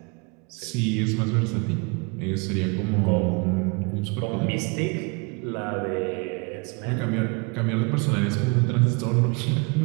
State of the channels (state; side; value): quieter; left; 31.1 dB